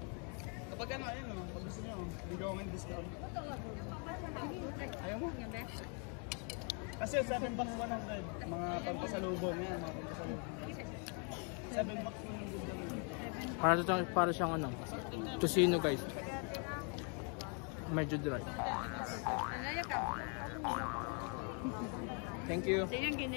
Kapag ano, ayun o, pag gusto nyo, bigyan ko ng discount. Ayaw mo? Kasi 7 bucks 100, mga pampasalubong yan, mga pampasalubong. 7 bucks 100. Para siyang ano, tocino guys. Medyo dry. Thank you.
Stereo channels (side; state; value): right; quieter; 37.9 dB